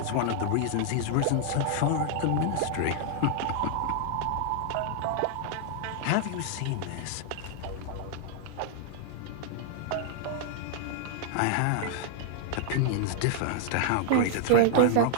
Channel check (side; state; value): both; different; correlation 0.00